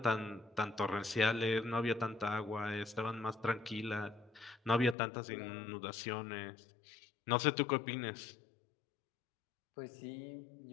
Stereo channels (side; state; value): right; drops out; at 5.0 s